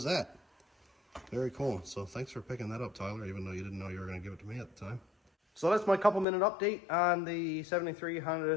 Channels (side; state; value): right; drops out; at 6.2 s